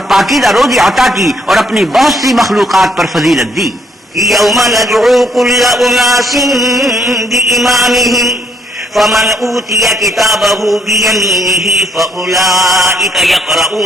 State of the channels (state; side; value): normal; both; correlation 0.69